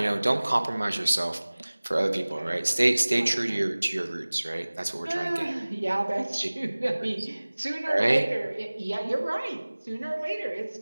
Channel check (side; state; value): both; inverted; correlation -1.00